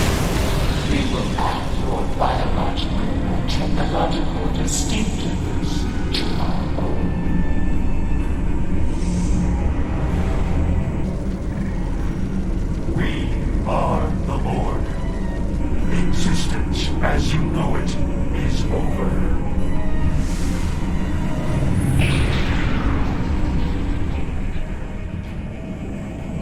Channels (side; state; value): both; identical; correlation 1.00